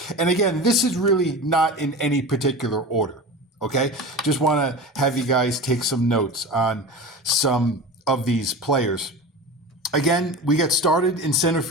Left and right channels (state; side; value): normal; both; correlation 0.31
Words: And again, this is really not in any particular order. Okay, just want to have you guys take some notes on some of these players. Again, we get started in center